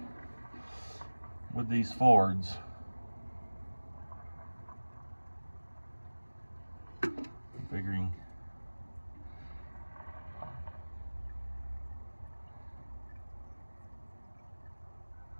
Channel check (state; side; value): inverted; both; correlation -1.00